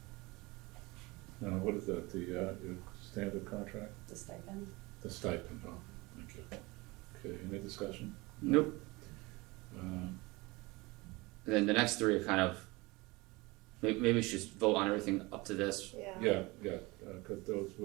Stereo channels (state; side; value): quieter; left; 23.4 dB